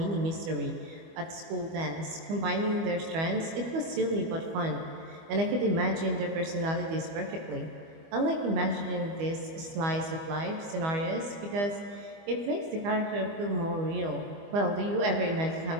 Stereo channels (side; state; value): left; late; 25 ms